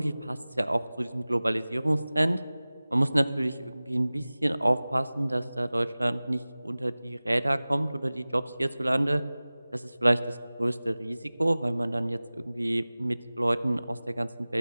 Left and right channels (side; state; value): both; inverted; correlation -0.98